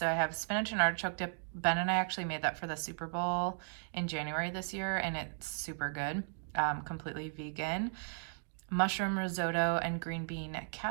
I have spinach and artichoke dip. Ben and I actually made that for the Super Bowl in January this year, and it's super good, completely vegan. Mushroom risotto and green bean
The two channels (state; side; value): silent; left; digital silence